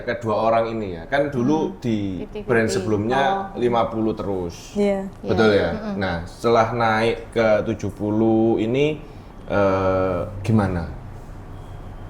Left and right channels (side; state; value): both; identical; correlation 1.00